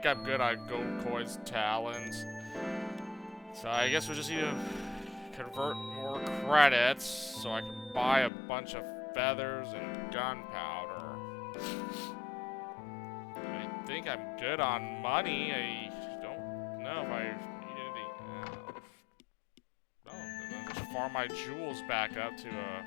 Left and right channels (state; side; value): drops out; right; at 8.3 s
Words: I'm good on gold coins, talons. So I guess we just need to convert more credits so I can buy a bunch of feathers and gunpowder. I think I'm good on money. I don't know if I need anything. No, then I'll just farm my jewels back up to a